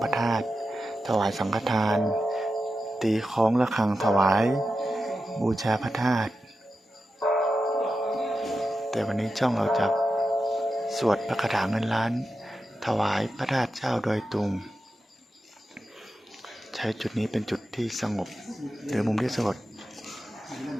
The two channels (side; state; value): both; normal; correlation 0.90